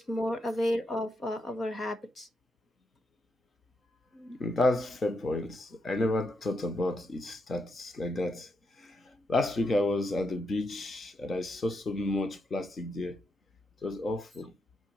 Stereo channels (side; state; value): both; normal; correlation 0.82